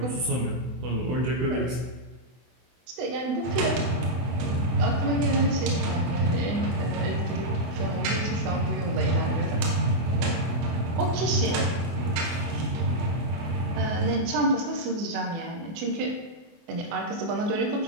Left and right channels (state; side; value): late; left; 24 ms